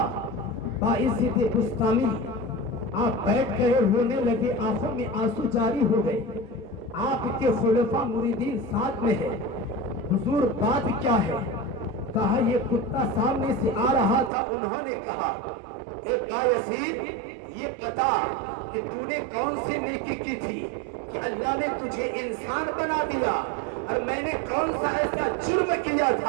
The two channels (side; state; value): left; drops out; at 14.3 s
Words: بایزید بسطامی آپ بیٹھ گئے، رونے لگے، آنکھوں میں آنسو جاری ہو گئے۔ آپ کے خلفاء مریدین ساتھ میں ہے، حضور بات کیا ہے؟ کہا یہ کتا سامنے سے آ رہا تھا، انہوں نے کہا اے بایزید یہ بتا کہ تو نے کون سی نیکی کی تھی کہ اللہ نے تجھے انسان بنا دیا، اور میں نے کون سا ایسا جرم کیا